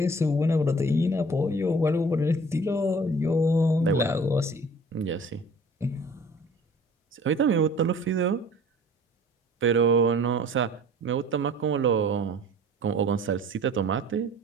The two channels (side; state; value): both; normal; correlation 0.48